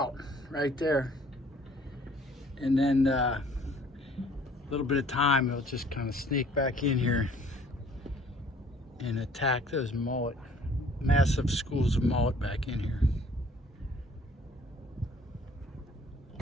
right there. And then a little bit of time, he'll just kind of sneak back in here and attack those mullet, massive schools of mullet back in here.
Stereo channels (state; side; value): normal; both; correlation 0.56